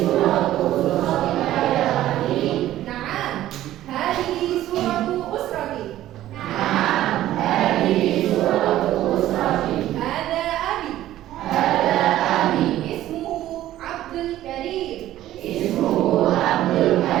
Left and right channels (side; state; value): left; quieter; 13.8 dB